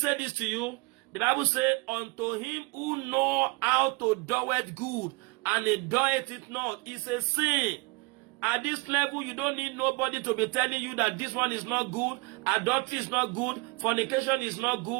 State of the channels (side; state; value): left; quieter; 26.5 dB